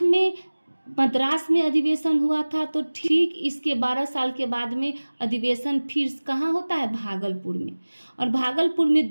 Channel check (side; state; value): both; inverted; correlation -1.00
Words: में मद्रास में अधिवेशन हुआ था तो ठीक इसके 12 साल के बाद में अधिवेशन फिर कहाँ होता है भागलपुर में। और भागलपुर में